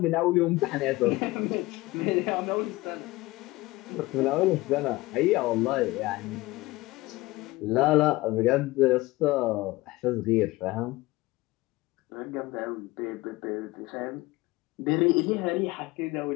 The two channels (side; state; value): right; quieter; 20.1 dB